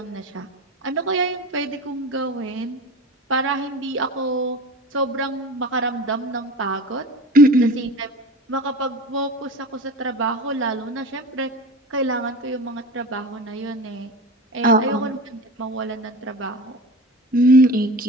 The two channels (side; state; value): both; normal; correlation 0.33